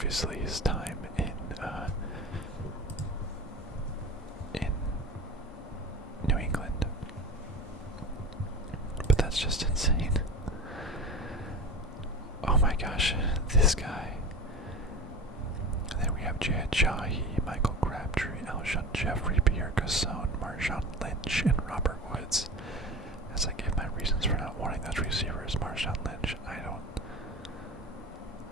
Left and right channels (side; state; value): both; normal; correlation 0.31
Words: his time in New England. But that's just insane. Oh my gosh, this guy. And then we have Jad Jahi, Michael Crabtree, Alshon Jeffrey, Pierre Gasson, Marshawn Lynch, and Robert Woods. As I give my reasons for not wanting those receivers, Marshawn Lynch, I